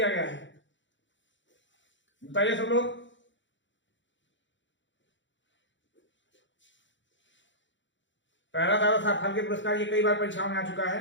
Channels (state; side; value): late; right; 0.54 ms